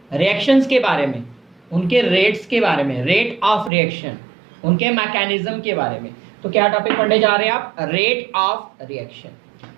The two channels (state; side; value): drops out; left; at 3.7 s